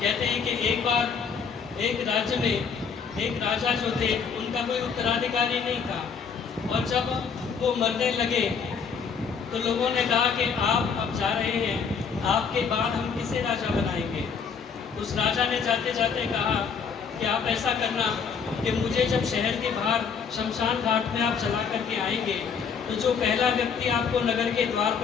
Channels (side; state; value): right; quieter; 6.1 dB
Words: हैं कि एक बार एक राज्य में एक राजा जो थे उनका कोई उत्तराधिकारी नहीं था, और जब वो मरने लगे तो लोगों ने कहा कि आप अब जा रहे हैं, आपके बाद हम किसे राजा बनाएंगे। उस राजा ने जाते जाते कहा कि आप ऐसा करना कि मुझे जब शहर के बाहर शमशान घाट में आप चला करके आएंगे तो जो पहला व्यक्ति आपको नगर के द्वार